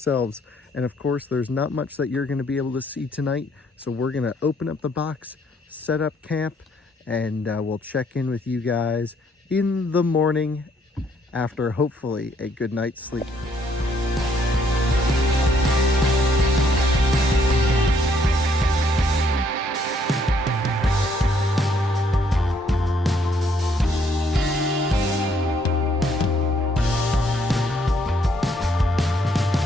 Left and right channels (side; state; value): both; normal; correlation 0.68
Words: And of course, there's not much that you're gonna be able to see tonight. So we're gonna open up the box, set up camp, and we'll check in with you guys in the morning after hopefully a good night's sleep.